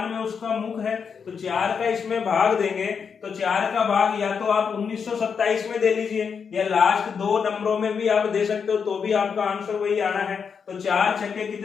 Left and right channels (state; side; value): quieter; right; 6.3 dB